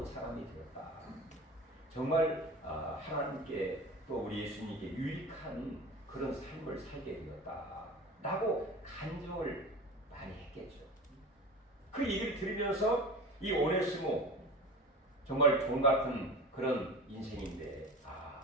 사람이 되었다. 정말 하나님께 또 우리 예수님께 유익한 그런 삶을 살게 되었다. 라고 간증을 많이 했겠죠. 그 얘기를 들으면서 이 오네시모 정말 종 같은 그런 인생인데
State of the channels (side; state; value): both; normal; correlation 0.34